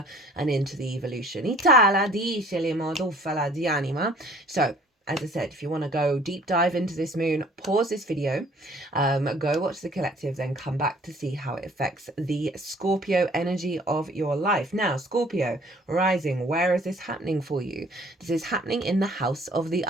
and into the evolution. So as I said, if you want to go deep dive into this moon, pause this video, go watch the collective, then come back to see how it affects the Scorpio energy of your life. Now, Scorpio rising, where is this happening for you? This is happening in the house of the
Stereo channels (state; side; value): normal; both; correlation 0.55